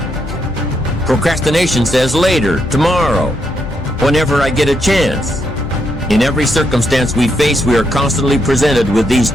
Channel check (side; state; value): both; normal; correlation 0.79